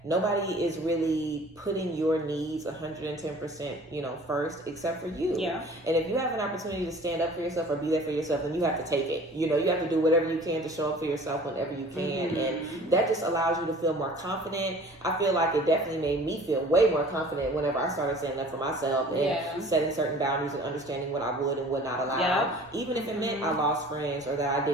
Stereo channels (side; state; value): both; normal; correlation 0.47